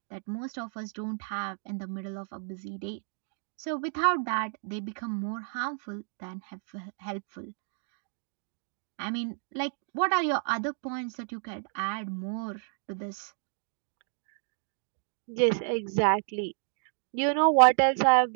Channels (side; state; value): left; silent; 57 dB below the other